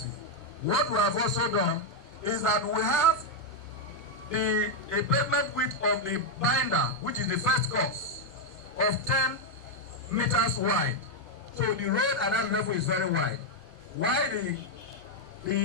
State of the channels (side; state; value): both; normal; correlation 0.01